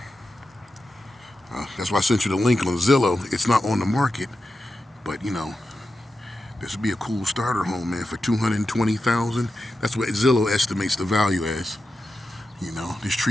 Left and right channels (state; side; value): normal; both; correlation 0.90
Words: That's why I sent you the link on Zillow. It's not on the market, but this would be a cool starter home, man, for $220,000. That's what Zillow estimates the value as. This